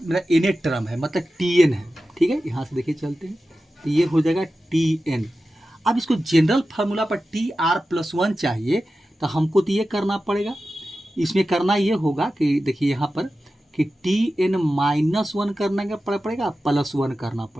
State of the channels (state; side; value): normal; both; correlation 0.93